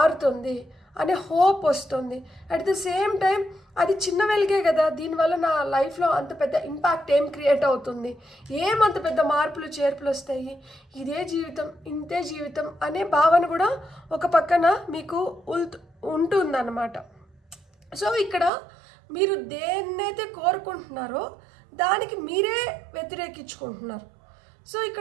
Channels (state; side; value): drops out; left; at 18.5 s